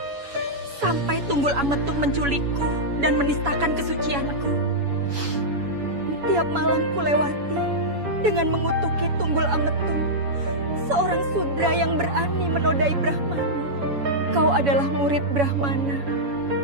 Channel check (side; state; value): left; late; 7.1 ms